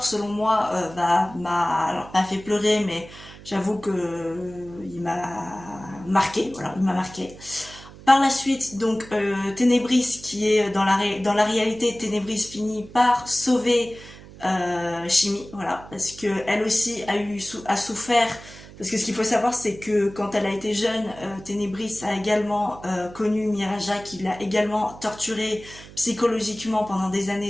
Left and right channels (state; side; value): noise; right; hum, 18 dB below the sound